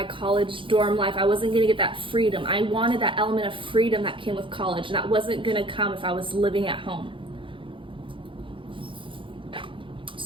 college dorm life. I wasn't going to get that freedom. I wanted that element of freedom that came with college, and that wasn't going to come if I was living at home.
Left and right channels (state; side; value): late; left; 0.25 ms